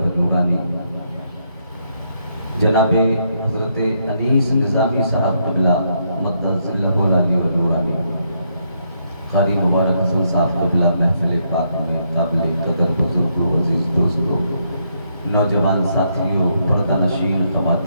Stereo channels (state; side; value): inverted; both; correlation -0.76